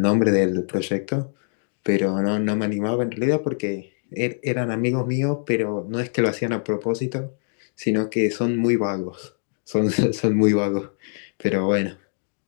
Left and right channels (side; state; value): right; silent; digital silence